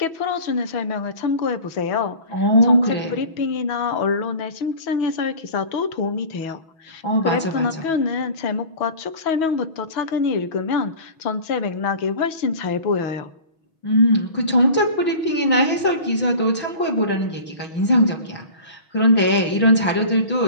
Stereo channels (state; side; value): late; right; 6.2 ms